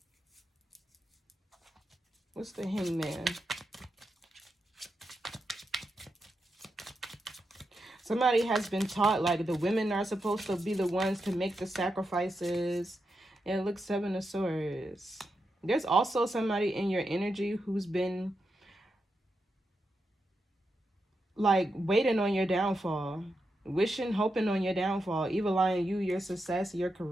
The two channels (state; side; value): normal; both; correlation 0.86